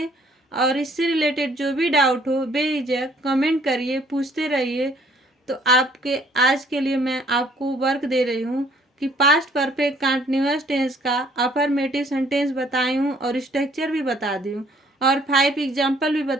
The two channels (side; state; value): both; normal; correlation 0.61